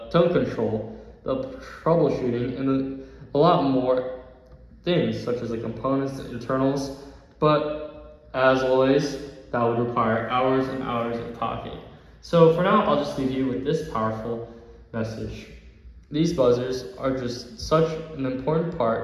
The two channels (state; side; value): identical; both; correlation 1.00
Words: tone control, the troubleshooting, and a lot more things, such as the components, the internals, but as always, that would require hours and hours of talking. So for now, I'll just leave you with this powerful message. These buzzers are just such an important